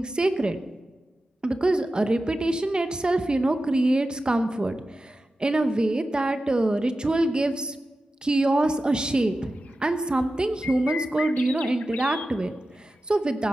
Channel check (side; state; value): both; normal; correlation 0.93